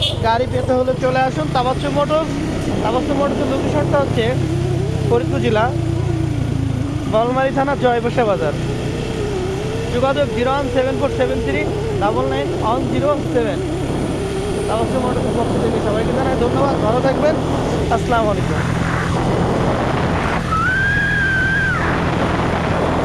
গাড়ি পেতে হলে চলে আসুন তাবাচ্চু মোটরস। মোটরসের লোকেশনটা হচ্ছে ফরিদপুর জেলা, বলমারী থানা, জয়বসা বাজার। যোগাযোগ 01747399107। তাবাচ্চু মোটরসের পক্ষ থেকে সবাইকে জানাই ধন্যবাদ। ভালো থাকবেন। আসসালামু আলাইকুম।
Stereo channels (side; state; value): both; identical; correlation 1.00